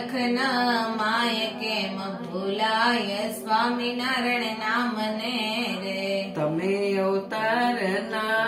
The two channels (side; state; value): both; identical; correlation 1.00